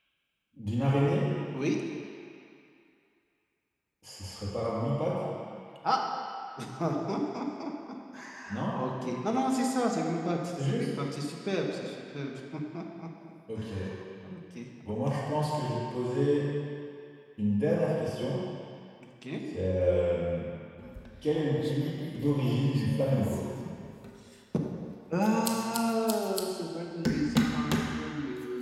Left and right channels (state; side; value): identical; both; correlation 1.00